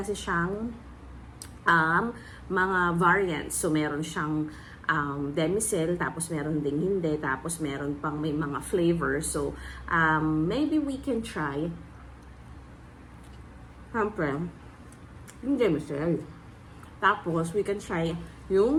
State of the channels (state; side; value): identical; both; correlation 1.00